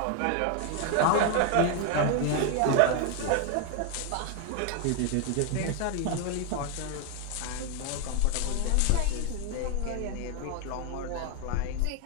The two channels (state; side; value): different; both; correlation 0.01